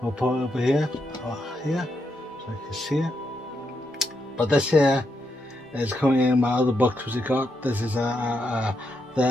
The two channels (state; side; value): normal; both; correlation 0.81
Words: we'll put it over here, so you can see it. But this here is coming in my other books which I got. This is the